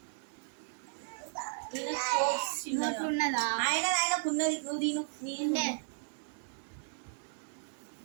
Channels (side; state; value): left; silent; digital silence